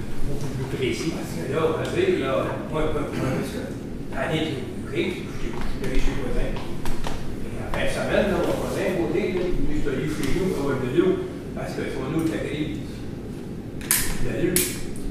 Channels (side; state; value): both; identical; correlation 1.00